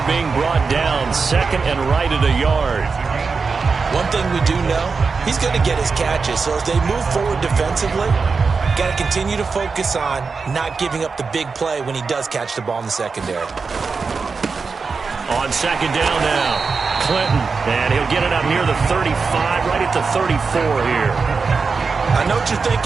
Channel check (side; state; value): left; quieter; 4.8 dB